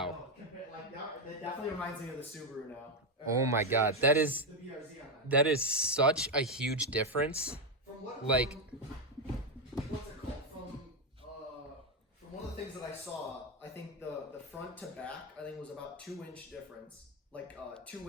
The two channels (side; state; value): both; normal; correlation 0.07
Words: Like that definitely reminds me of the Subaru now. Oh my God. That is The BRZ on that. that is such a huge difference. From what? Like- What's it called? From one of the things that I saw, I think the front to back, I think was about 2-inch difference, like